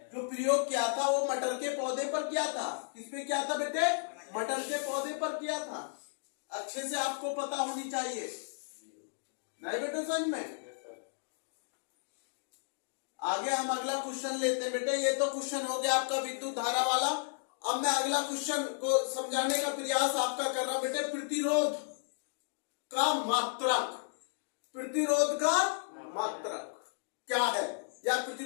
जो प्रयोग किया था वो मटर के पौधे पर किया था। किस पे किया था बेटे? मटर के पौधे पर किया था। अच्छे से आपको पता होनी चाहिए, नहीं बेटे समझ में। आगे हम अगला क्वेश्चन लेते हैं बेटे। ये तो क्वेश्चन हो गया आपका विद्युत धारा वाला। अब मैं अगला क्वेश्चन को समझाने का प्रयास आपका कर रहा हूं बेटे। प्रतिरोध का मात्रक। प्रतिरोध का मात्रक क्या है, या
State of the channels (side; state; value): right; silent; digital silence